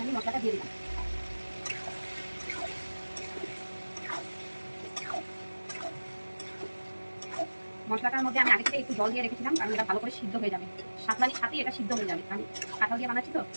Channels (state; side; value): inverted; both; correlation -1.00